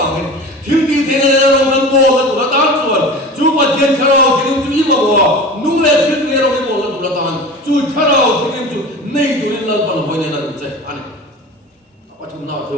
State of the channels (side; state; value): both; normal; correlation 0.35